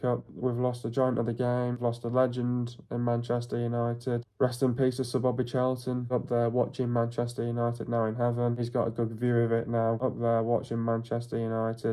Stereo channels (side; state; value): both; identical; correlation 1.00